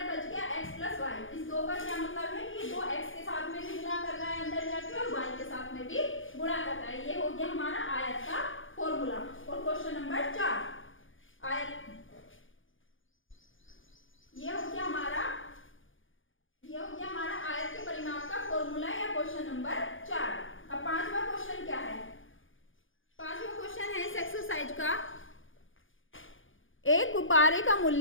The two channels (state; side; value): late; right; 0.58 ms